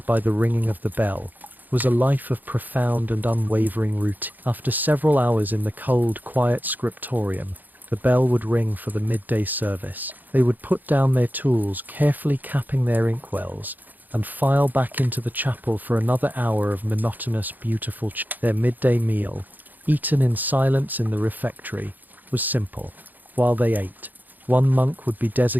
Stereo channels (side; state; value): left; late; 0.085 ms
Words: by the ringing of the bell, was a life of profound and unwavering routine. After several hours in the cold, quiet scriptorium, the bell would ring for the midday service. They would put down their tools, carefully capping their inkwells, and file back into the chapel for another hour of monotonous, beautiful Their midday meal, eaten in silence in the refectory, was simple. While they ate, one monk would be